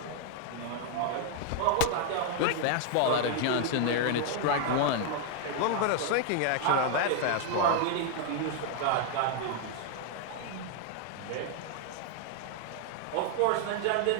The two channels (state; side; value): different; both; correlation 0.00